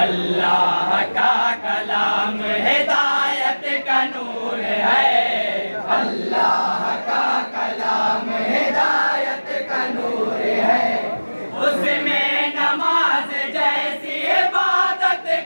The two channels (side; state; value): both; inverted; correlation -1.00